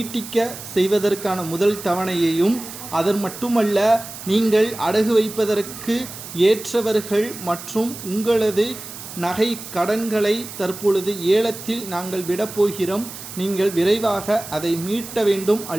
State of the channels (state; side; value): noise; right; hiss, 12 dB below the sound